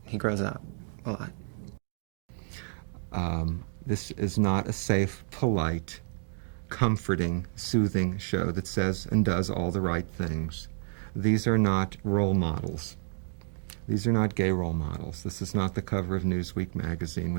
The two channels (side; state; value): left; silent; digital silence